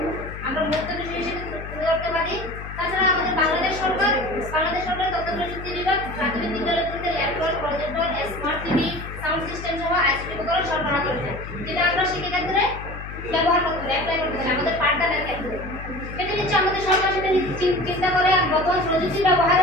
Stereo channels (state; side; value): noise; left; hum, 11 dB below the sound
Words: আমরা মূর্ত বিষয় হিসেবে তুলে ধরতে পারি। তাছাড়া আমাদের বাংলাদেশ সরকার তথ্য প্রযুক্তি বিভাগ প্রাথমিক বিদ্যালয়গুলিতে laptop, projector, smart TV, sound system সহ আইসিটি উপকরণ সরবরাহ করেছে, যেটা আমরা শিক্ষাক্ষেত্রে ব্যবহার করতে পারি, অ্যাপ্লাই করতে পারি আমাদের পাঠদানের ক্ষেত্রে। সেটা হচ্ছে আমাদের সরকার সেটা চিন্তা করে বর্তমান প্রযুক্তি